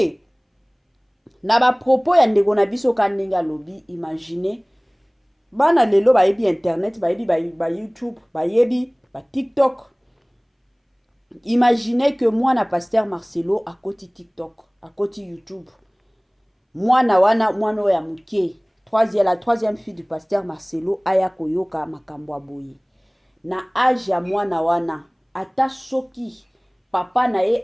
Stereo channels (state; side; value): identical; both; correlation 1.00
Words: na ba propos ya ndeko na biso ka ndenge alobi. Imagine bana lelo bayebi internet, bayebi ba YouTube, bayebi ba TikTok. Imaginez que mwana pasteur Marcelo akoti TikTok, akoti YouTube. Mwana ya muke, la troisième fille du pasteur Marcelo aya koyoka makambo aboye. Na âge ya mwana wana ata soki papa na ye